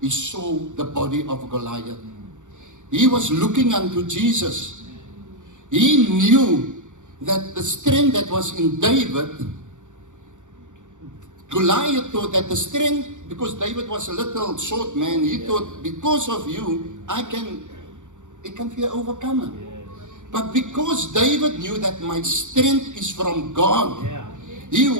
saw the body of Goliath. He was looking unto Jesus. He knew that the strength that was in David, Goliath thought that the strength, because David was a little short man, he thought, because of you, it can be overcome. But because David knew that my strength is from God, he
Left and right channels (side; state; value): left; late; 0.85 ms